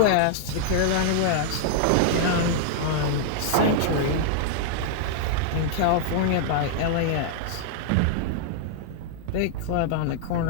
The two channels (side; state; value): both; different; correlation -0.01